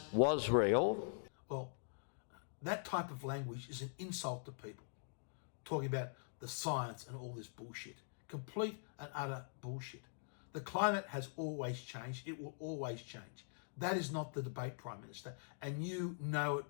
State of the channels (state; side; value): silent; right; digital silence